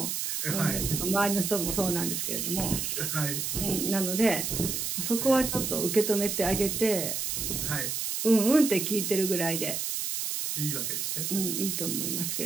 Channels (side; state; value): right; noise; hiss, 2 dB below the sound